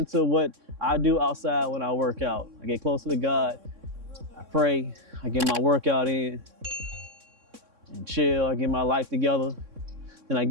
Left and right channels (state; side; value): late; left; 3.6 ms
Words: what I do outside when I work out. I get closer to God. I pray. I get my workout in and chill. I get my life together. Then I